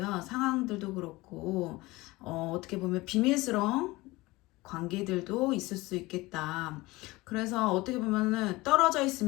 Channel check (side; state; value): right; quieter; 21.0 dB